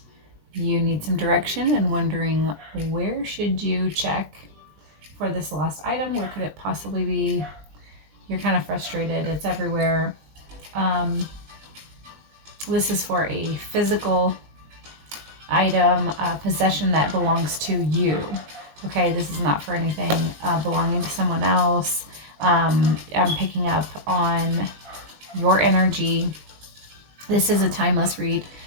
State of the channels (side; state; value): left; late; 20 ms